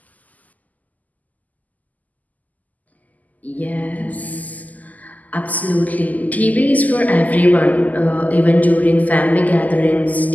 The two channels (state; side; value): late; right; 0.079 ms